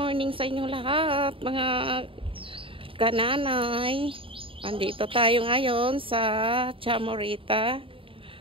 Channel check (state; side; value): late; left; 0.26 ms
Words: sa inyong lahat, mga kananay. Andito tayo ngayon sa Chamorita